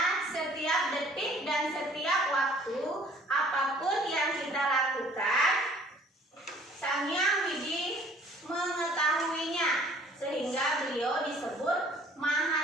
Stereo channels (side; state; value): both; normal; correlation 0.54